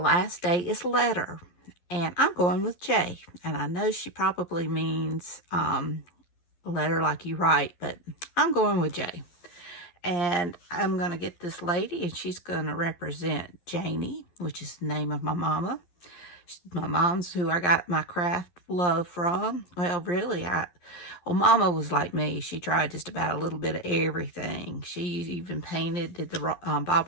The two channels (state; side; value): late; right; 11 ms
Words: day is letter, and I'm going with J. And I know she probably means letter like you write, but I'm going with J. And I'm going to get this lady, and she's going to represent Janie, which is the name of my mama. My mom's who I got my craft love from. Well, really, Mama was like me. She tried just about a little bit of everything. She even did the Bob